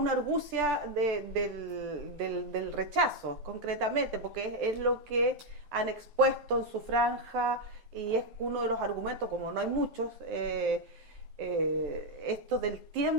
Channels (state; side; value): late; left; 12 ms